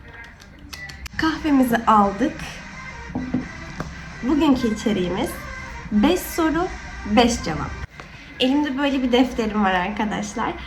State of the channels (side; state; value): both; identical; correlation 1.00